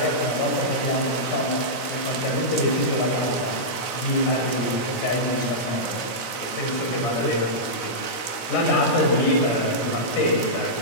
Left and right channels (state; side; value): late; right; 16 ms